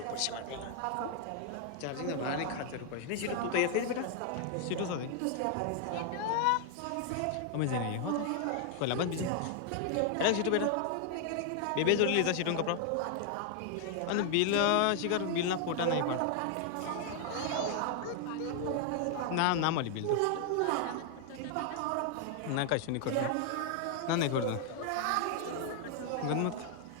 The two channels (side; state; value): both; different; correlation 0.00